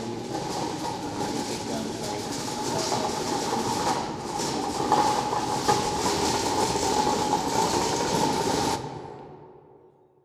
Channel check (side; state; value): both; identical; correlation 1.00